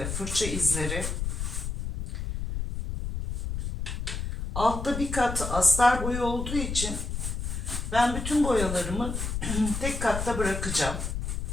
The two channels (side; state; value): left; noise; rumble, 4 dB below the sound